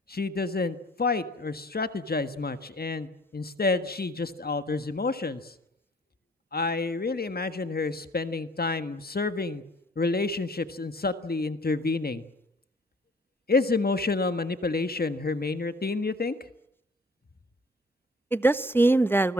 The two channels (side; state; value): both; normal; correlation 0.54